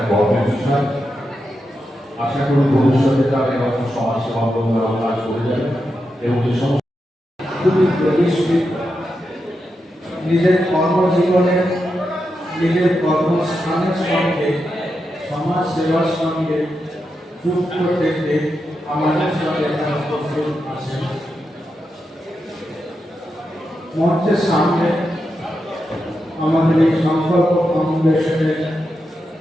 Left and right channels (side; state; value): both; normal; correlation 0.87